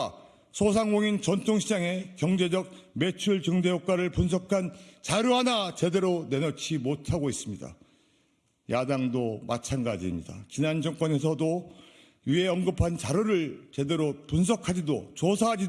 소상공인 전통시장의 경제적 매출 증대 효과를 분석한 자료 하나 제대로 내놓지 못하고 있습니다. 야당도 마찬가지입니다. 지난 정권에서도 위에 언급한 자료를 제대로 분석하지도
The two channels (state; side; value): identical; both; correlation 1.00